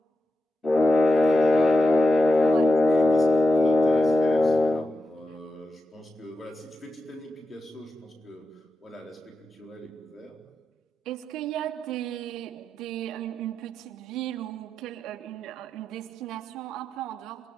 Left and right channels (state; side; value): normal; both; correlation 0.90